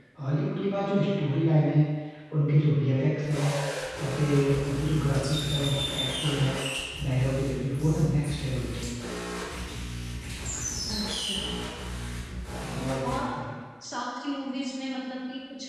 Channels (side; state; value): both; identical; correlation 1.00